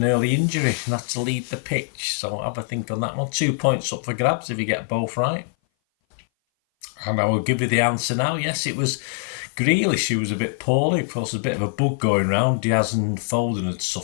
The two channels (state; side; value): silent; right; 58 dB below the other